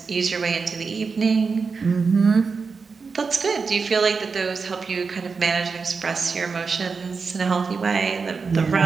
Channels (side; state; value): left; quieter; 4.9 dB